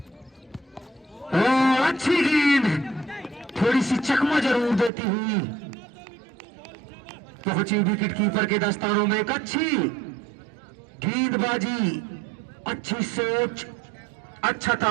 और अच्छी गेंद थोड़ी सी चकमा जरूर देती हुई पहुंची विकेट कीपर के दस्तानों में। एक अच्छी गेंदबाजी, अच्छी सोच, अच्छा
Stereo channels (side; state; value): left; drops out; at 4.9 s